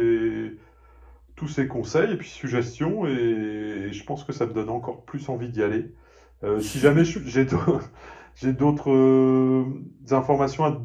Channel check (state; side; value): identical; both; correlation 1.00